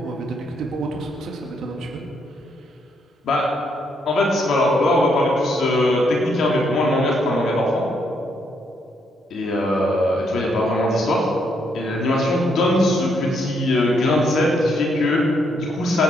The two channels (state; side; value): normal; both; correlation 0.75